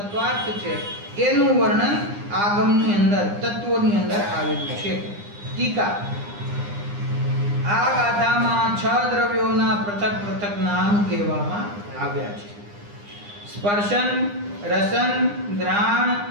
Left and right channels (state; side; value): late; left; 9.8 ms